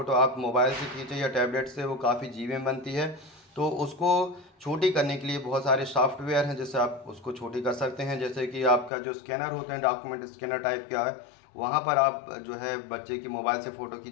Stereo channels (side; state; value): right; drops out; at 8.9 s